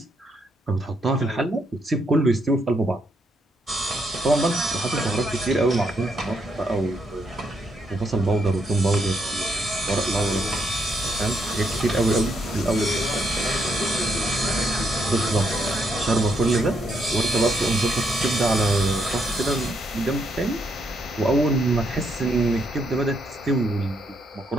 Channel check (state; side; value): normal; both; correlation 0.76